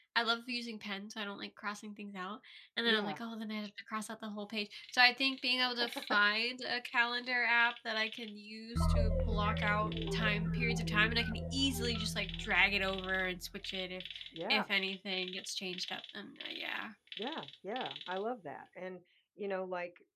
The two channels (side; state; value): both; identical; correlation 1.00